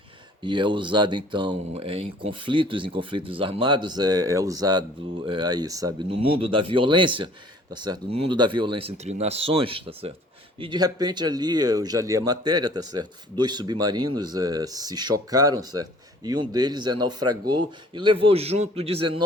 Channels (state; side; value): normal; both; correlation 0.53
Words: E é usado então em conflitos armados, é usado aí, sabe, no mundo da violência, tá certo? No mundo da violência entre nações, tá certo? E de repente ali, eu já li a matéria, tá certo? Dois submarinos se chocaram, certo? E um deles naufragou e levou junto